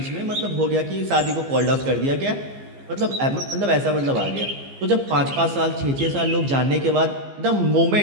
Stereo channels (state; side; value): late; left; 15 ms